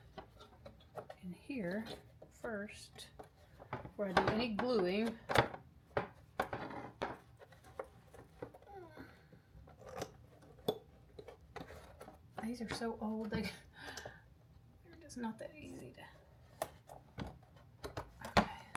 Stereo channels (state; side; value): identical; both; correlation 1.00